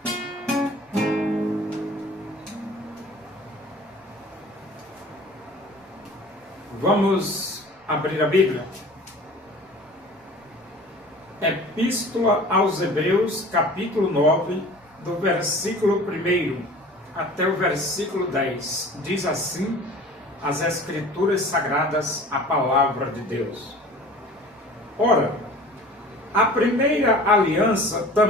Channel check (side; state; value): both; normal; correlation 0.44